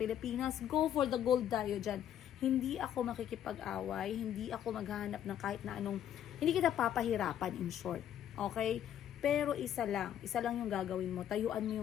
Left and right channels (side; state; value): right; quieter; 10.4 dB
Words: go for the gold tayo diyan. Hindi ako makikipag-away, hindi ako maghahanap ng kahit na anong, hindi kita papahirapan in short. Okay? Pero isa lang yung gagawin mo, tayuan mo